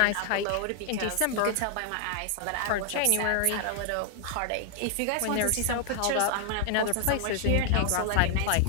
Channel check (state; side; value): different; both; correlation 0.00